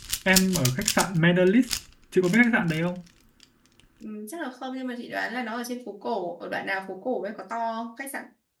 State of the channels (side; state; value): both; identical; correlation 1.00